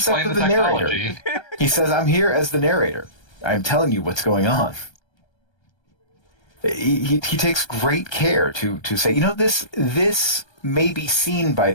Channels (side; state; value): right; late; 1.3 ms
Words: of the narrator. He says, "I'm here as the narrator. I'm telling you what's going on." He takes great care to say, this may be seen by